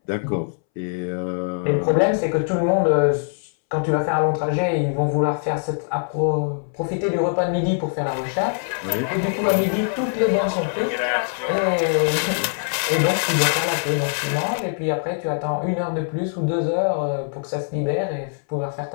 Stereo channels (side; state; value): right; silent; 63 dB below the other